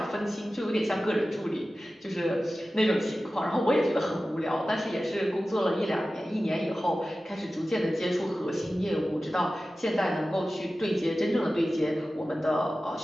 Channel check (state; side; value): normal; both; correlation 0.95